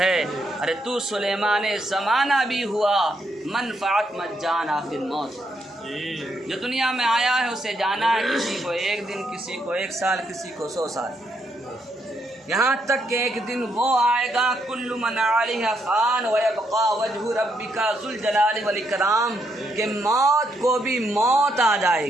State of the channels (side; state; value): both; normal; correlation 0.77